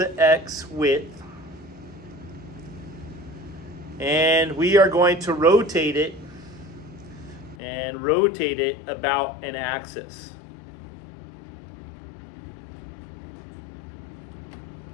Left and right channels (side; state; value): right; drops out; at 7.6 s